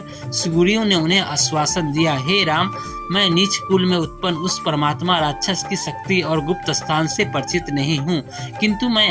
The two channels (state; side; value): identical; both; correlation 1.00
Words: सुग्रीव ने उन्हें आश्वासन दिया, हे राम, मैं नीच कुल में उत्पन्न उस परमात्मा राक्षस की शक्ति और गुप्त स्थान से परिचित नहीं हूँ, किंतु